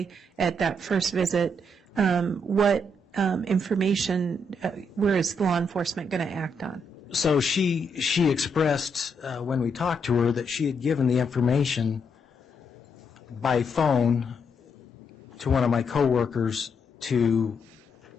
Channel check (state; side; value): normal; both; correlation 0.77